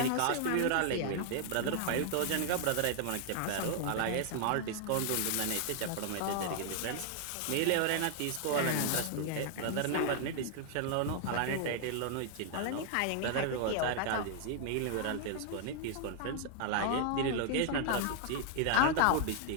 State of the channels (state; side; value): different; both; correlation 0.00